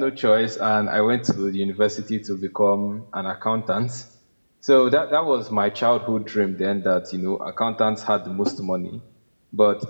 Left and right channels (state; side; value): inverted; both; correlation -1.00